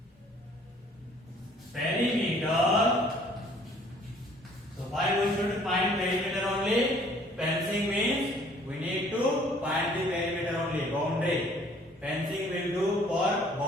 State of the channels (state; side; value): normal; both; correlation 0.57